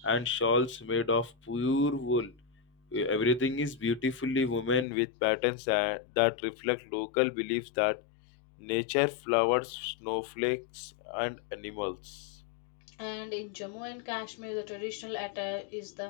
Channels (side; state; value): right; drops out; at 4.9 s